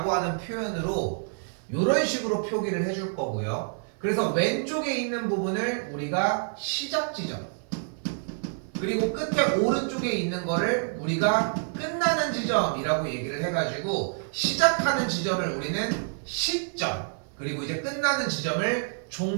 하는 표현으로 이런 식으로 표기를 해줄 거고요. 그래서 왼쪽에 있는 부분을 우리가 시작 지점 그리고 끝에 오른쪽에 있는 거를 우리가 끝나는 지점이라고 얘기를 해가지고 시작하는 지점을 우리는 시점 그리고 이제 끝나는 지점을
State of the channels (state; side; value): silent; left; 56 dB below the other